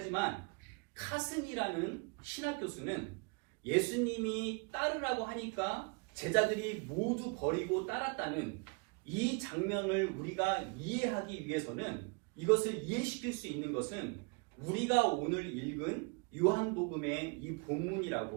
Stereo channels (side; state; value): left; quieter; 31.8 dB